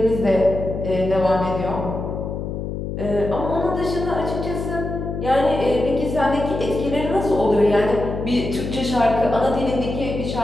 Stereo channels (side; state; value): left; noise; hum, 5 dB below the sound